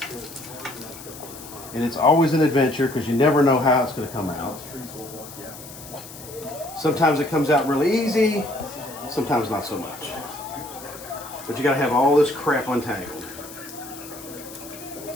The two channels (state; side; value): noise; left; hiss, 15 dB below the sound